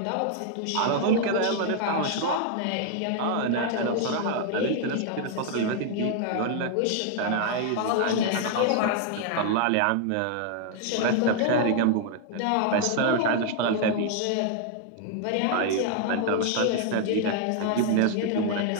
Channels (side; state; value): both; different; correlation 0.00